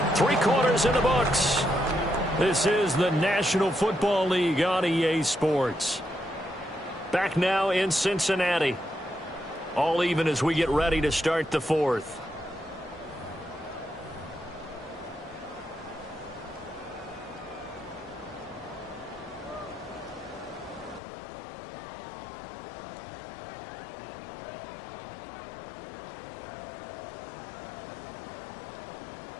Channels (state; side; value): drops out; right; at 21.0 s